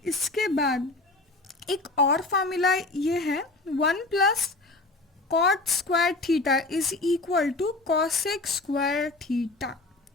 इसके बाद एक और फार्मूला ये है 1 plus cot square theta is equal to cosec square theta.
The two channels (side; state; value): right; quieter; 3.2 dB